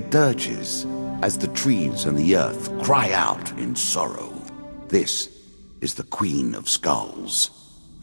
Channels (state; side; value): inverted; both; correlation -1.00